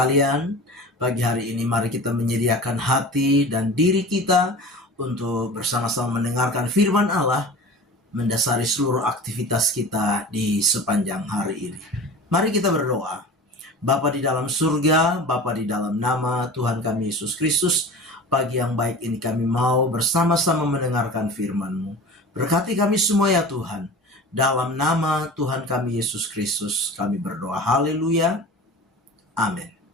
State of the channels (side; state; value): both; normal; correlation 0.36